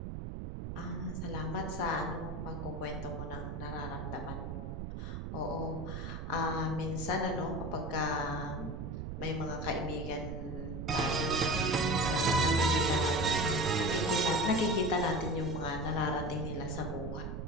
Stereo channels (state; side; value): noise; right; rumble, 6 dB below the sound